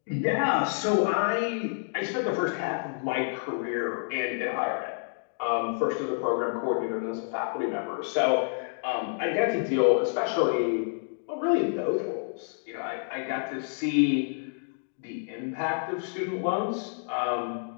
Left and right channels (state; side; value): silent; right; digital silence